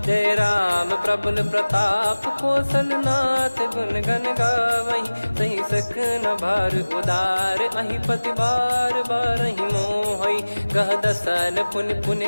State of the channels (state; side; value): inverted; both; correlation -1.00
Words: जय राम प्रबल प्रताप कौशल नाथ गुण गण गावै सही सख न भार उदार अहि पति बार बारहि मोहै गह दसन पुन